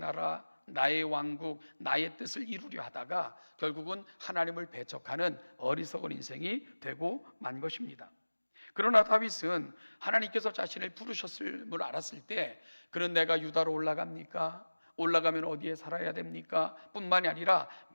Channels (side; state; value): both; inverted; correlation -1.00